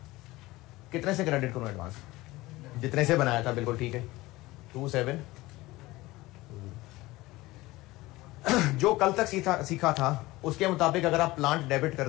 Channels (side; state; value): right; quieter; 19.5 dB